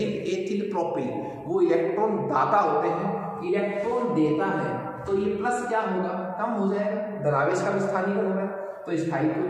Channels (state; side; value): identical; both; correlation 1.00